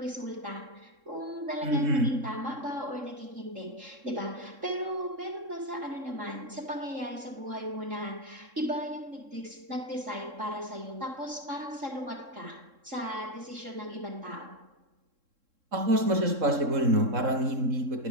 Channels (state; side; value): late; left; 3.7 ms